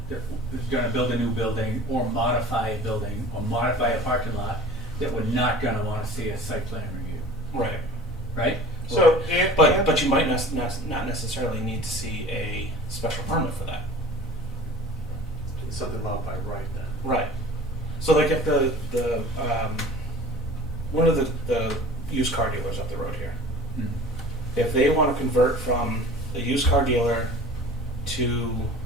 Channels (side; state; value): both; normal; correlation 0.43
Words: is gonna build a new building or modify a building or modify a parking lot that we're not gonna wanna see a site plan review, Right. right? So, But you might not necessarily need to see a special permit for that. It's something allowed by right then. Right. So like if the one of the used car dealers up the road here, Mm. if they want to convert from a used car dealer to